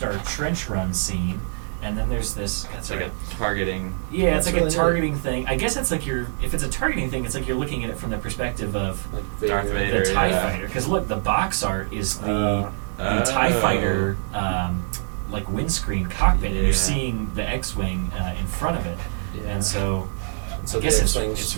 trench run scene. And then there's this. it's like a targeting. Yeah, it's That's like really a neat. targeting thing. I guess it's like if it's a targeting thing, it's like you're looking at it from the perspective of Like Darth Vader. Vader. the TIE yeah. fighter. Because look, the box art is the Oh. TIE fighter like windscreen cockpit, and Yeah. you're seeing the X-Wing in front of it. Yeah. And so So I guess the it's X-Wings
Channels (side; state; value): left; silent; digital silence